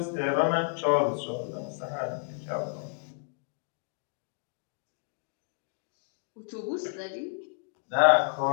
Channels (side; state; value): right; silent; digital silence